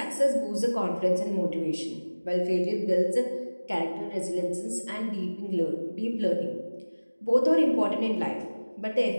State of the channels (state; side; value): inverted; both; correlation -1.00